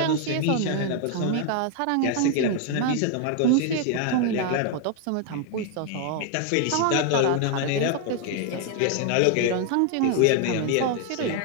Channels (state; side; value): different; both; correlation 0.00